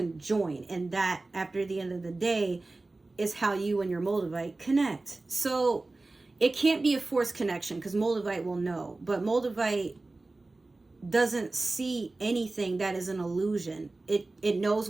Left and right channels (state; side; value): quieter; left; 3.2 dB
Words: and that, after the end of the day, is how you and your Moldavite connect. So it can't be a forced connection, because Moldavite will know, but Moldavite doesn't see anything that is an illusion. It knows